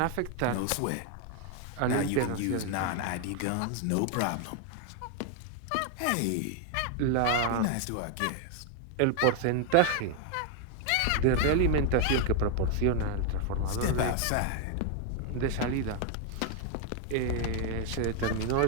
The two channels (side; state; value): both; different; correlation 0.00